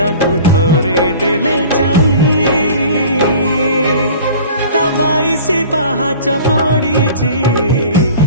थरे देले चाही ता 22 पाहाच पड़ीची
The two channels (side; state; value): both; inverted; correlation -0.43